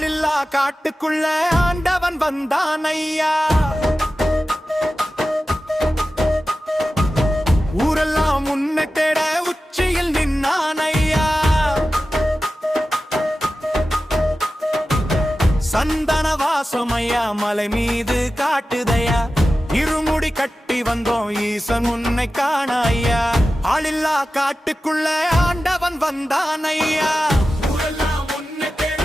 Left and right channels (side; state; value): both; normal; correlation 0.94